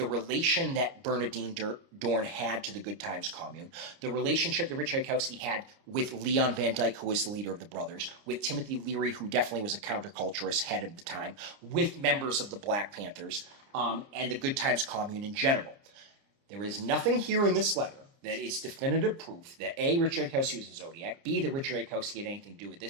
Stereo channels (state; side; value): late; left; 29 ms